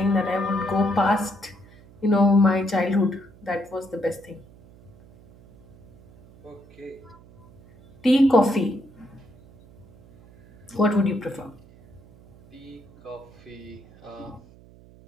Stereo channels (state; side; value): noise; right; hum, 24 dB below the sound